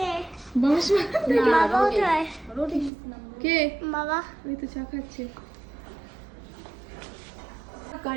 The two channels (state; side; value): drops out; left; at 2.9 s